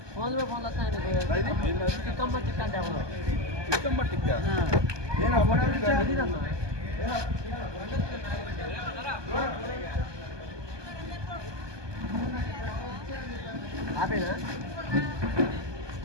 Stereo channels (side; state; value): left; late; 1.2 ms